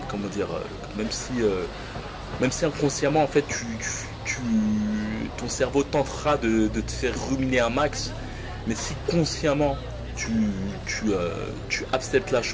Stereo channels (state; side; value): identical; both; correlation 1.00